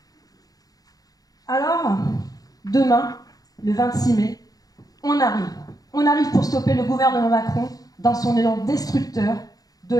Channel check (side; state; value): right; late; 0.18 ms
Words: Alors, demain, le 26 mai, on arrive. On arrive pour stopper le gouvernement Macron dans son élan destructeur de